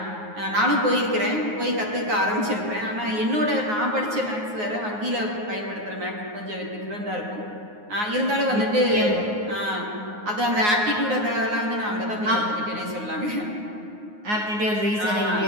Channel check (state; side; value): late; left; 9.5 ms